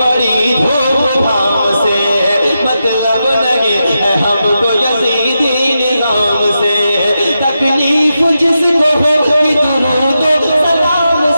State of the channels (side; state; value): both; inverted; correlation -0.88